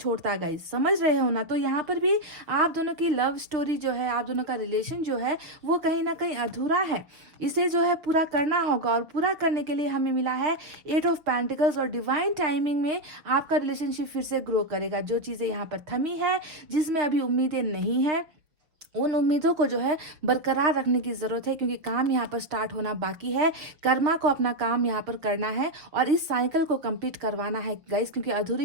गाइस, समझ रहे हो ना। तो यहाँ पर भी आप दोनों की लव स्टोरी जो है, आप दोनों का रिलेशन जो है वो कहीं ना कहीं अधूरा है, इसे जो है पूरा करना होगा। और पूरा करने के लिए हमें मिला है 8 ऑफ पेंटिकल्स, और डिवाइन टाइमिंग में आपका रिलेशनशिप फिर से ग्रो करेगा। जो चीज़ें यहाँ पर थमी है, जिसमें अभी उम्मीदें नहीं है, उन उम्मीदों को जो है बरकरार रखने की ज़रूरत है, क्योंकि काम यहाँ पर स्टार्ट होना बाकी है। कर्मा को अपना काम यहाँ पर करना है और इस साइकिल को कंप्लीट करवाना है गाइस, क्योंकि अधूरी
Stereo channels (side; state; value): left; late; 5.9 ms